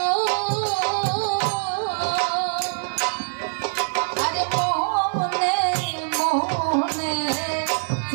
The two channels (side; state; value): left; silent; 58 dB below the other